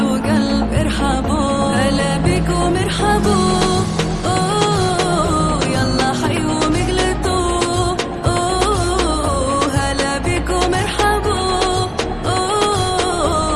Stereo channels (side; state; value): both; identical; correlation 1.00